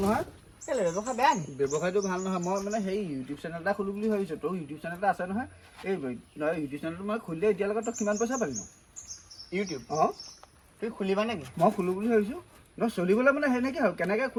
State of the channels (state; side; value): identical; both; correlation 1.00